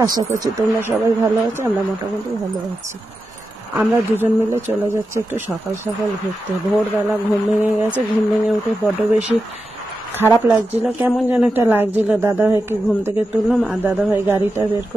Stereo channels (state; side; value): normal; both; correlation 0.90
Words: আশা করছি তোমরা সবাই ভালো আছো। আমরা মোটামুটি ভালো আছি। আমরা দুজন মিলে চলে যাচ্ছি একটু সকাল সকাল ঘুরতে। ভোরবেলা ঘুম ভেঙে গেছে, ঘুম ভেঙে উঠে বড্ড বেশি খারাপ লাগছিল, কেমন যেন একটা লাগছিল। দাদাভাইকে ঘুম থেকে তুললাম আর দাদাভাই গাড়িটা বের